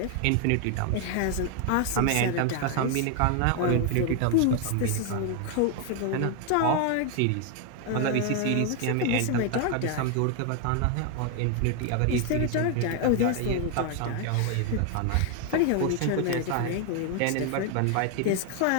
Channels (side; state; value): both; different; correlation 0.01